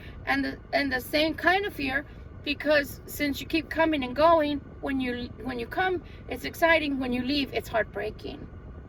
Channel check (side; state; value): both; identical; correlation 1.00